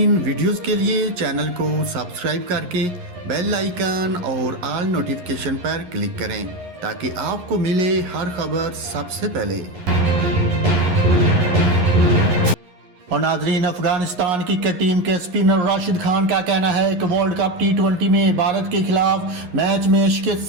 ویڈیوز کے لیے چینل کو سبسکرائب کر کے بیل آئیکن اور آل نوٹیفیکیشن پر کلک کریں تاکہ آپ کو ملے ہر خبر سب سے پہلے۔ اور ناظرین، افغانستان کرکٹ ٹیم کے اسپنر راشد خان کا کہنا ہے کہ ورلڈ کپ T20 میں بھارت کے خلاف میچ میں شکست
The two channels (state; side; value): late; left; 11 ms